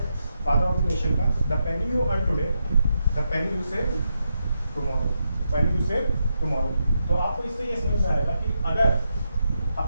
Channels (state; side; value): inverted; both; correlation -0.84